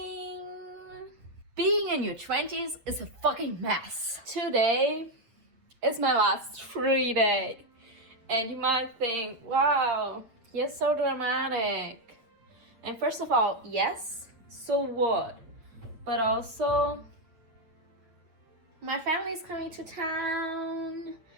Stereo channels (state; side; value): late; left; 8.7 ms